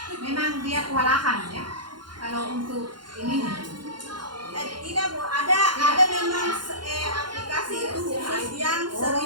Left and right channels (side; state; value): left; late; 0.71 ms